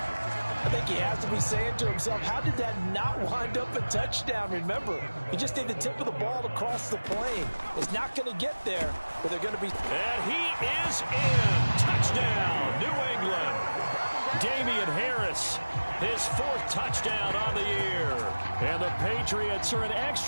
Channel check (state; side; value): inverted; both; correlation -1.00